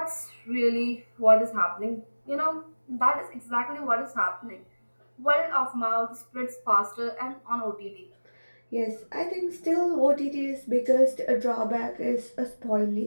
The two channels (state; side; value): inverted; both; correlation -1.00